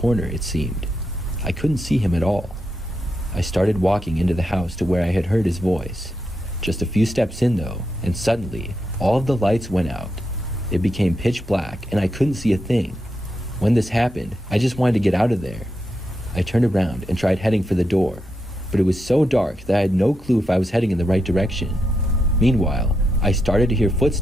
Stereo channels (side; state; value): both; normal; correlation 0.84